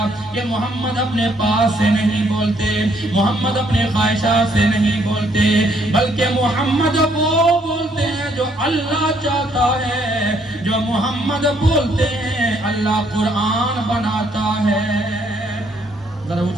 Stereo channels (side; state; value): both; normal; correlation 0.68